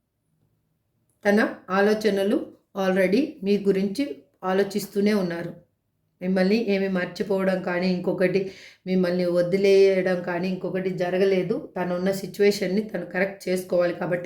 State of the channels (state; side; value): identical; both; correlation 1.00